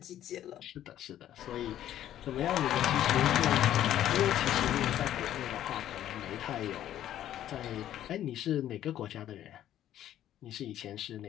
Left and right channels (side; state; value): right; quieter; 11.9 dB